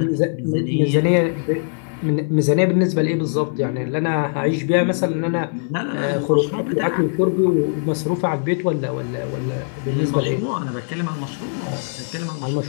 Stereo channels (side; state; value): right; silent; digital silence